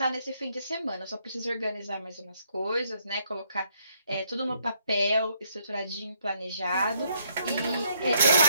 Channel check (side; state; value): both; inverted; correlation -0.71